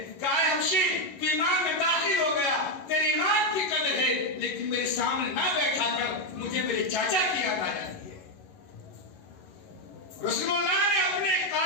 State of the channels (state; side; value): late; right; 11 ms